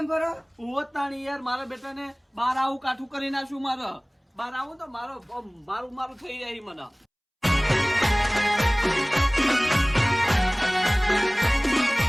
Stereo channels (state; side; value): identical; both; correlation 1.00